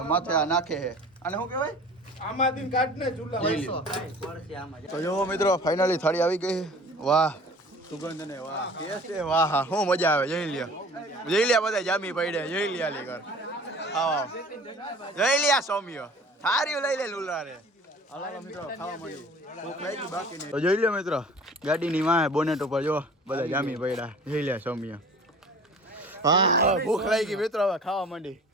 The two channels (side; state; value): both; normal; correlation 0.45